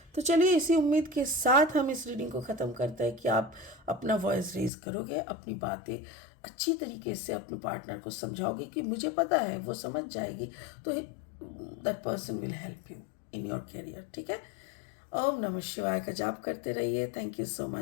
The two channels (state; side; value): drops out; right; at 4.7 s